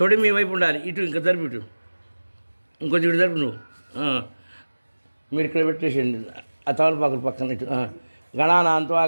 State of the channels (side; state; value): both; inverted; correlation -1.00